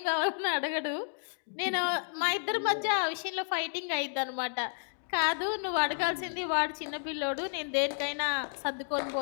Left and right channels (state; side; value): silent; right; 57 dB below the other